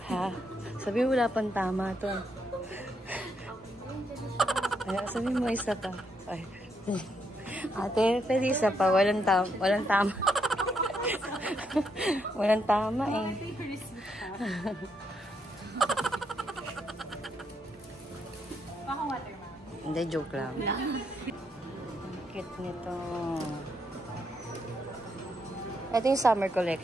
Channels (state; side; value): normal; both; correlation 0.77